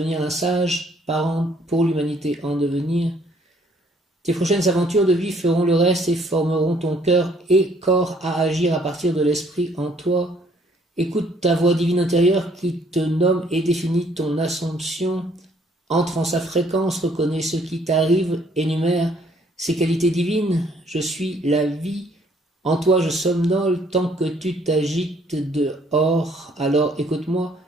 un sage parent pour l'humanité en devenir. Tes prochaines aventures de vie feront le reste et formeront ton cœur et corps à agir à partir de l'esprit en toi. Écoute ta voix divine intérieure qui te nomme et définit ton assomption. Entre en sa fréquence, reconnais ce qui t'arrive, énumère ses qualités divines. Je suis la vie. En toi je somnole tant que tu t'agites dehors. Alors écoute-moi,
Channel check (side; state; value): both; normal; correlation 0.63